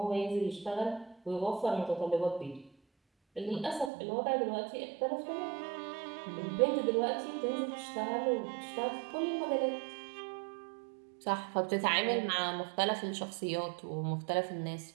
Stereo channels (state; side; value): drops out; left; at 3.9 s